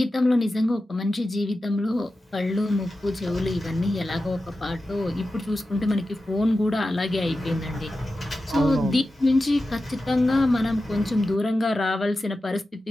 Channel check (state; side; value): normal; both; correlation 0.92